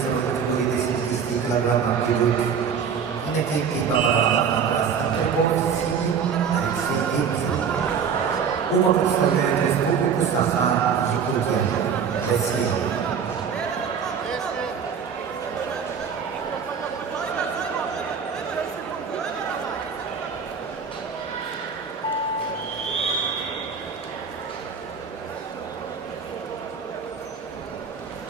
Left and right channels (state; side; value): quieter; left; 6.8 dB